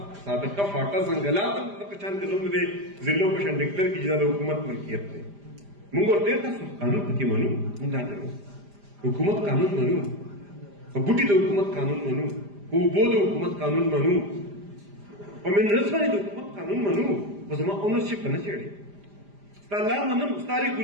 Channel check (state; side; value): late; left; 5.0 ms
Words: سابقه فاټا ځنګلات هم دغه شان کې زموږ د ضلعو په شان ډیکلیئر کړي چې دا د حکومت ملکیت دی موږ ورته تاسو قانون پکې منو موږ دا نه حکومت قانون منو په بوټي د حکومت قانون منو په اوبو د حکومت قانون منو په منرلز باندې د حکومت قانون منو خو زما اونرشپ نه چېړي ستا لا منم ستا